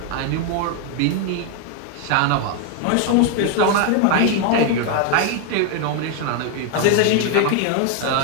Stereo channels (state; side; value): different; both; correlation 0.01